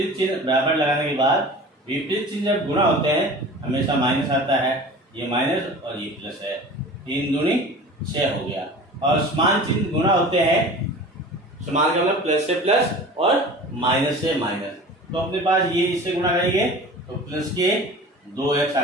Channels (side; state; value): both; normal; correlation 0.39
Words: चिन्ह बराबर लगाने के बाद, विपरीत चिन्ह जब गुणा होते हैं हमेशा माइनस आता है, ये माइनस और ये प्लस है, 3 दूनी 6 हो गया। और समान चिन्ह गुणा होते हैं, समान का मतलब प्लस से प्लस और माइनस से माइनस, तो अपने पास ये इससे गुणा करेंगे तो प्लस के 2x आ